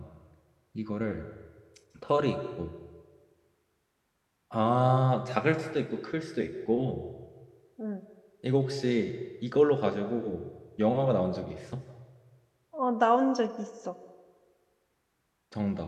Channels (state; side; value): identical; both; correlation 1.00